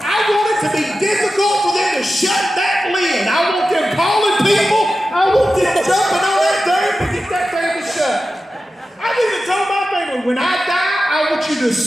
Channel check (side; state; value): both; normal; correlation 0.93